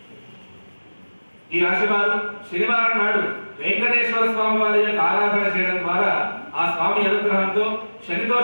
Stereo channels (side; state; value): both; inverted; correlation -1.00